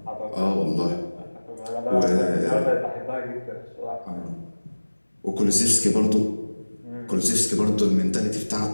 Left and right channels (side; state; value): both; inverted; correlation -1.00